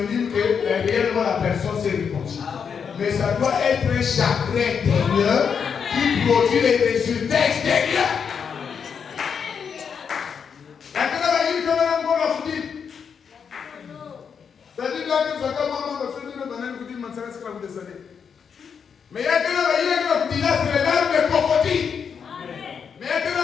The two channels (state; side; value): quieter; right; 6.7 dB